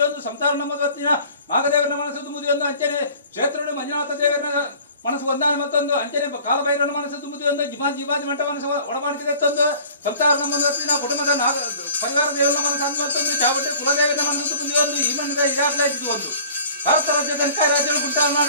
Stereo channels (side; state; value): both; inverted; correlation -0.47